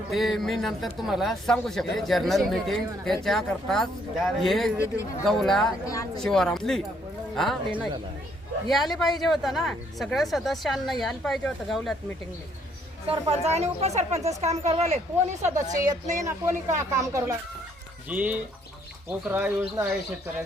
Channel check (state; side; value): normal; both; correlation 0.68